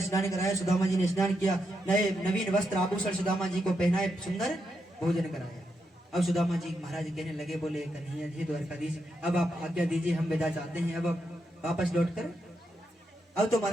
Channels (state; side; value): normal; both; correlation 0.83